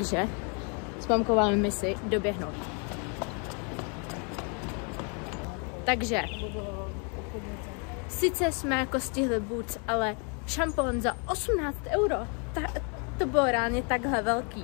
s mamkou máme misi doběhnout. Takže, sice jsme jako stihli Boots, ale šampon za 18 €. To bylo reálně takhle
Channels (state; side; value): quieter; right; 37.1 dB